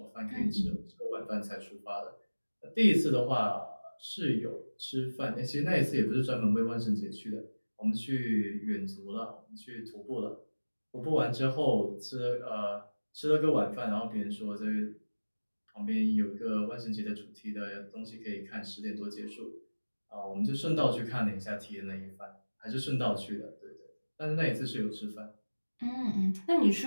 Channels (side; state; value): both; inverted; correlation -1.00